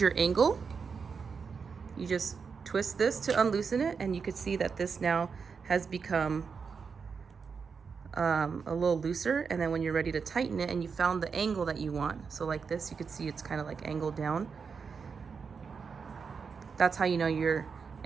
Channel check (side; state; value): left; quieter; 5.7 dB